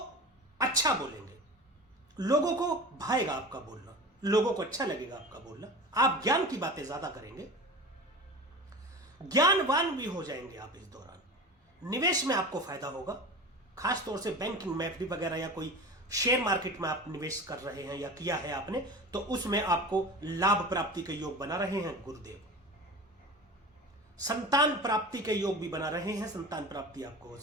अच्छा बोलेंगे, लोगों को भाएगा आपका बोलना, लोगों को अच्छा लगेगा आपका बोलना। आप ज्ञान की बातें ज्यादा करेंगे, ज्ञानवान भी हो जाएंगे आप इस दौरान। निवेश में आपको फायदा होगा, खास तौर से बैंकिंग में, एफडी वगैरह या कोई शेयर मार्केट में आप निवेश कर रहे हैं या किया है आपने, तो उसमें आपको लाभ प्राप्ति के योग बना रहे हैं गुरुदेव। संतान प्राप्ति के योग भी बना रहे हैं, संतान प्राप्ति आपको हो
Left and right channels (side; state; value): both; normal; correlation 0.34